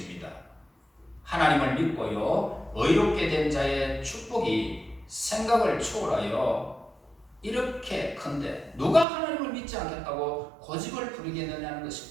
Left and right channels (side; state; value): left; drops out; at 9.1 s